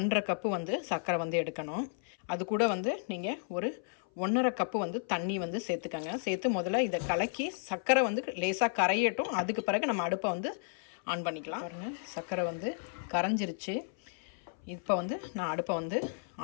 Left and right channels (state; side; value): silent; right; 56 dB below the other